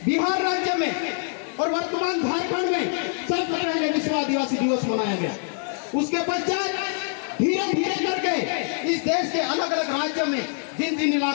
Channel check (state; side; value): silent; right; 57 dB below the other